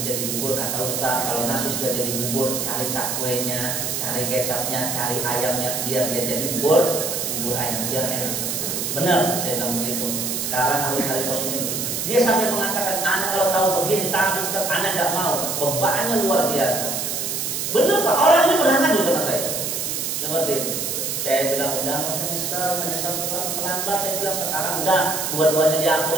jadi bubur, kata Ustaz, kalau nasi sudah jadi bubur, cari cakwenya, cari kecapnya, cari ayamnya, biar dia jadi bubur ayam, biar enak. Benar, saya bilang begitu. Sekarang harus cari posisinya begitu. Dia sampai mengatakan, anak kalau tahu begini, tapi Ustaz, anak nggak mau. Bebannya luar biasa. Benar Pak, orang ini pernah ngadu sama saya. Seperti itu. Saya bilang, udah nggak usah menyesal terlambat. Saya bilang, sekarang udah, dua-duanya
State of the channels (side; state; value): right; noise; hiss, 2 dB below the sound